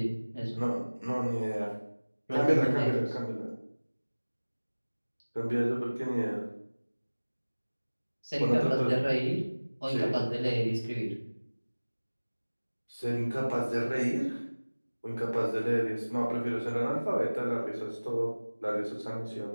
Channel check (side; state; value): both; inverted; correlation -1.00